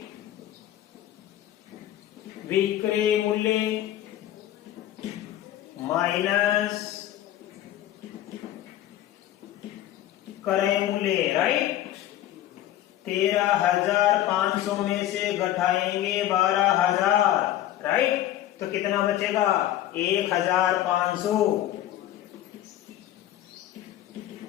विक्रय मूल्य माइनस क्रय मूल्य। राइट? 13,500 में से घटाएंगे 12,000। राइट? तो कितना बचेगा? 1,500।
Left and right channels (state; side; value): quieter; right; 12.9 dB